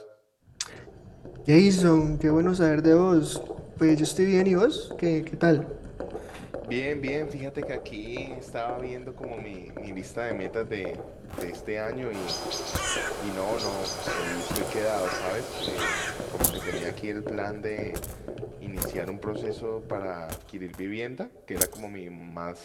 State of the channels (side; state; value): both; identical; correlation 1.00